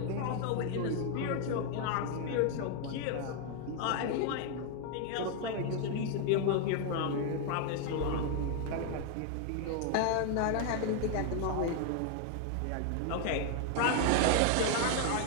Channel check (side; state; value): both; different; correlation 0.01